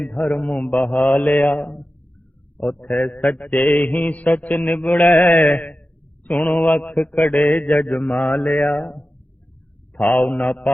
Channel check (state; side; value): late; right; 0.075 ms